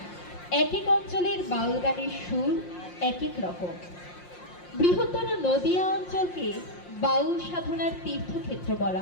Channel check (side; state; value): right; late; 5.6 ms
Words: এক এক অঞ্চলের বাউল গানের সুর এক এক রকম। বৃহত্তর নদিয়া অঞ্চলকে বাউল সাধনার তীর্থক্ষেত্র